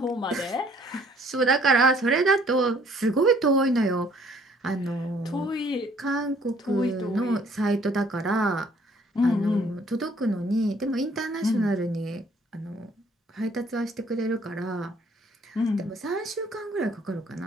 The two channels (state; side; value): normal; both; correlation 0.60